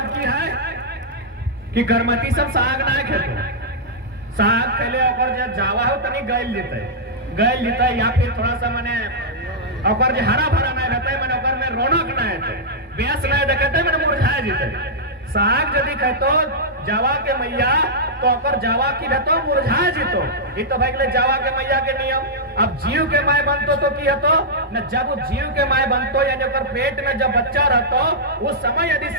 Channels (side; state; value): both; normal; correlation -0.10